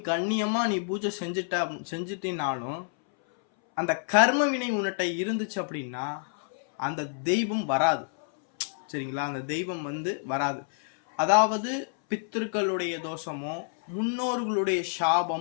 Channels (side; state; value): right; silent; 59 dB below the other